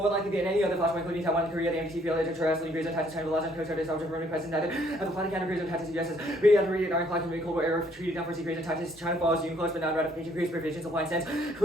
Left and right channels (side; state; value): both; normal; correlation 0.66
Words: likely than any other flashpoint, including Taiwan and Korea, the MDT failure to terrestrially grazing tactics, China, the last coast guard is also Roman present, neither have the planetary grazing tactics of US has reiterated ironclad and Cold War era treated down for sea grazing tactics, China follows UNCLOS, but non-ratification creates provisions, applying sense,